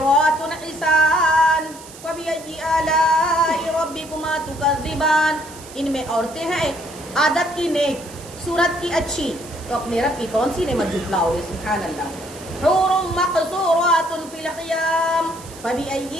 حسان فبأي آلاء ربكما تكذبان، ان میں عورتیں ہیں عادت کی نیک، صورت کی اچھی، تو اپنے رب کی کون سی نعمت جھٹلاؤ گے؟ سبحان اللہ۔ حور مقصورات فی الخیام فبأي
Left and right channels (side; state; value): right; noise; hiss, 18 dB below the sound